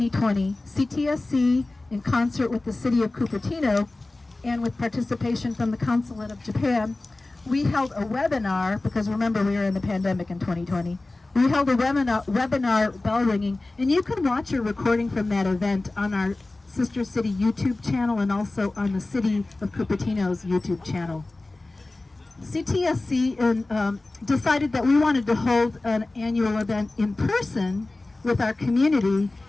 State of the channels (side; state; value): right; quieter; 3.0 dB